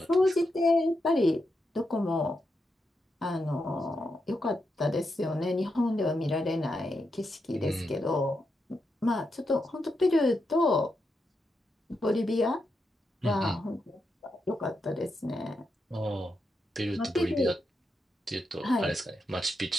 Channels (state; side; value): normal; both; correlation 0.85